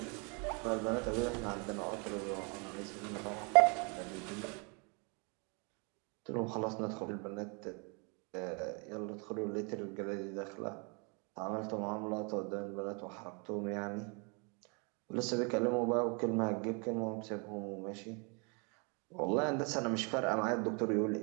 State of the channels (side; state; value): left; quieter; 33.8 dB